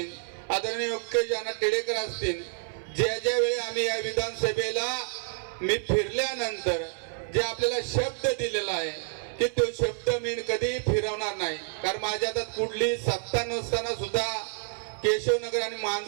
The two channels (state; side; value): silent; left; 57 dB below the other